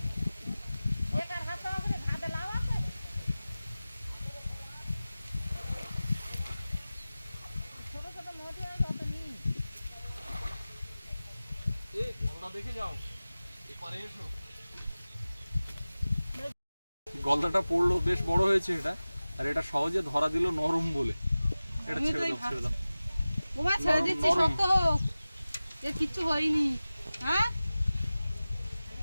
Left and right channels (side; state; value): both; inverted; correlation -0.97